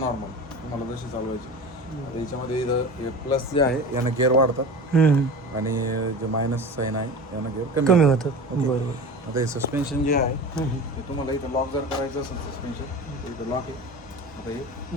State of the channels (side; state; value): both; normal; correlation 0.33